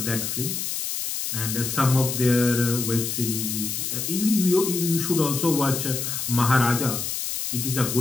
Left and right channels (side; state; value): left; noise; hiss, 3 dB below the sound